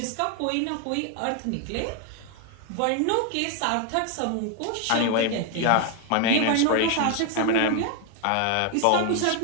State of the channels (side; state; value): both; different; correlation 0.01